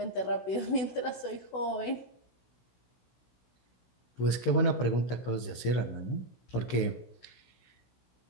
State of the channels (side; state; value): right; late; 16 ms